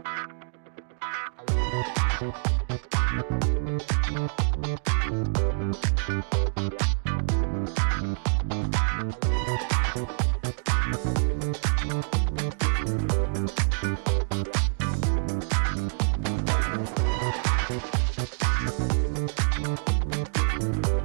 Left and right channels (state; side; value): silent; left; digital silence